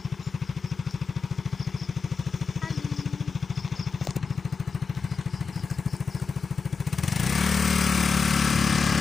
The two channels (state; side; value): quieter; right; 5.2 dB